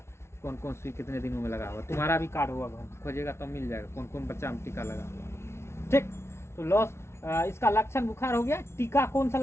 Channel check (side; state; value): right; late; 0.13 ms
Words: कौन कौन सुई कितने दिनों में लगा हुआ। तुम्हारा भी कार्ड होगा, घर खोजेगा तो मिल जाएगा कौन कौन बच्चा में टीका लगा हुआ। ठीक, तो लॉस इसका लक्षण बुखार हो गया। टीका कौन सा